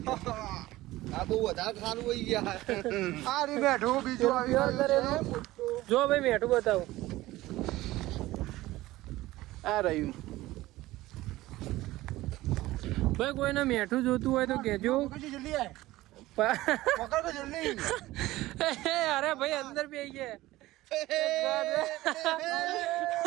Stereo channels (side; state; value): left; quieter; 17.4 dB